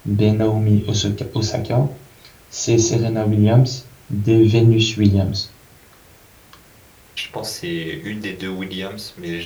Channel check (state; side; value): identical; both; correlation 1.00